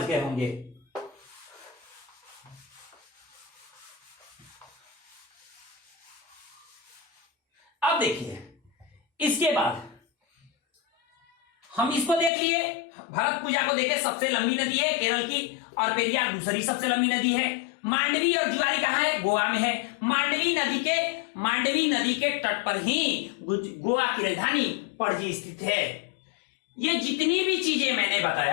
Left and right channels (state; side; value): drops out; right; at 12.3 s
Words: गए होंगे। अब देखिए, इसके बाद हम इसको देख लिए, भरतपुजा को देखे, सबसे लंबी नदी है केरल की, और पेरियार दूसरी सबसे लंबी नदी है। मांडवी और जुआरी कहां है, गोवा में है। मांडवी नदी के तट पर ही गोवा की राजधानी पणजी स्थित है। ये जितनी भी चीजें मैंने